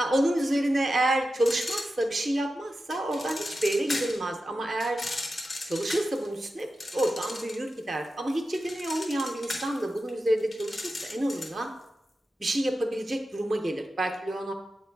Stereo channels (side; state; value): both; normal; correlation 0.91